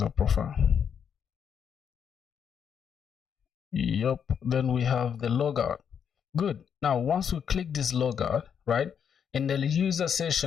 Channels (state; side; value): quieter; right; 7.7 dB